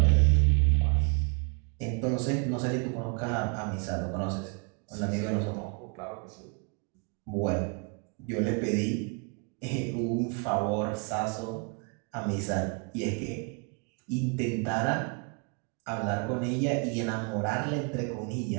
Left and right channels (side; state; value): left; quieter; 36.1 dB